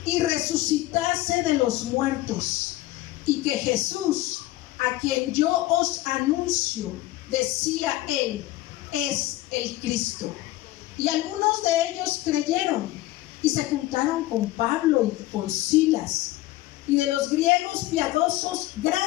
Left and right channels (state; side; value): quieter; right; 16.8 dB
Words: y resucitase de los muertos, y que Jesús, a quien yo os anuncio, decía él, es el Cristo. Y algunos de ellos creyeron y se juntaron con Pablo y con Silas, y de los griegos piadosos